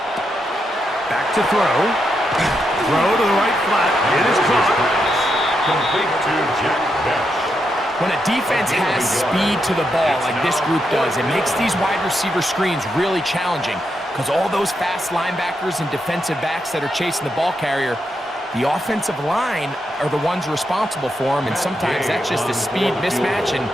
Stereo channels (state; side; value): normal; both; correlation 0.83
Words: Back to throw. Throw to the right flat. It is caught. Complete to Jack Bech. When a defense has speed to the ball like this group does, it makes these wide receiver screens really challenging because all those fast linebackers and defensive backs that are chasing the ball carrier, the offensive line are the ones responsible for them, and sometimes that's just a speed mismatch, and